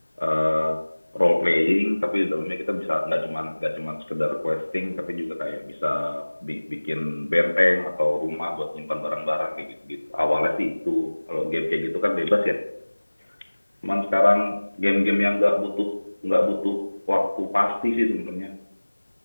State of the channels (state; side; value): inverted; both; correlation -1.00